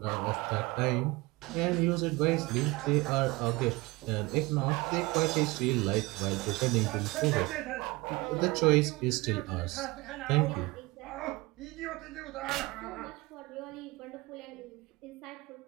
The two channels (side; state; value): left; quieter; 23.0 dB